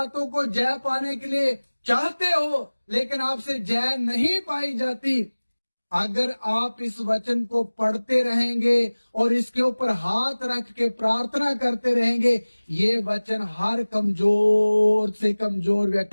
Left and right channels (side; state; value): both; inverted; correlation -1.00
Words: को जय पाने के लिए चाहते हो लेकिन आपसे जय नहीं पाई जाती। अगर आप इस वचन को पढ़ते रहेंगे और इसके ऊपर हाथ रख के प्रार्थना करते रहेंगे, ये वचन हर कमजोर से कमजोर